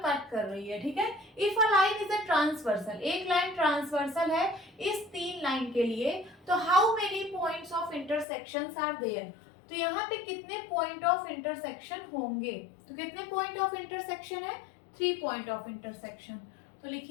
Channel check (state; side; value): drops out; right; at 8.2 s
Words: कट कर रही है। ठीक है, if a line is a transversal, एक लाइन ट्रांसवर्सल है इस तीन लाइन के लिए, तो how many points of intersections are there, तो यहाँ पे कितने पॉइंट ऑफ इंटरसेक्शन होंगे। तो कितने पॉइंट ऑफ इंटरसेक्शन है, 3 पॉइंट ऑफ इंटरसेक्शन। तो